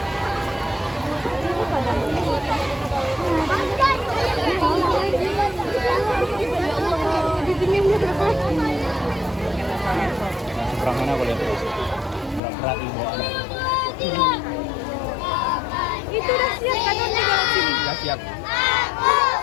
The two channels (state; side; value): drops out; right; at 12.4 s